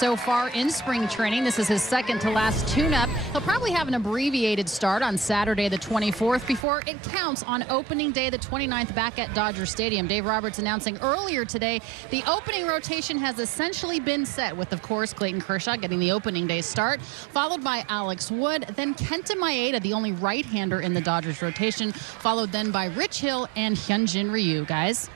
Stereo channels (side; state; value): left; drops out; at 6.7 s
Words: far in spring training. This is his second to last tune-up. He'll probably have an abbreviated start on Saturday the 24th before it counts on opening day the 29th back at Dodger Stadium. Dave Roberts announcing earlier today the opening rotation has essentially been set with, of course, Clayton Kershaw getting the opening day start, followed by Alex Wood, then Kenta Maeda, the only right-hander in the Dodgers rotation, followed then by Rich Hill and Hyunjin Ryu. Guys.